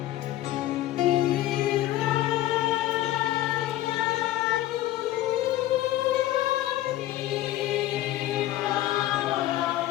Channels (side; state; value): right; quieter; 14.6 dB